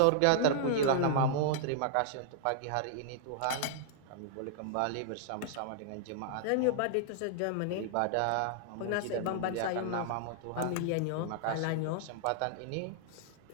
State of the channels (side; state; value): both; different; correlation -0.01